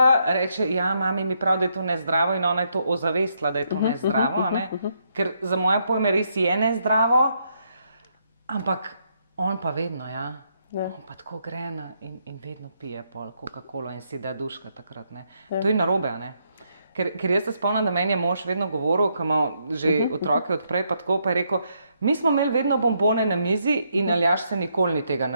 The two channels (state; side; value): inverted; both; correlation -0.76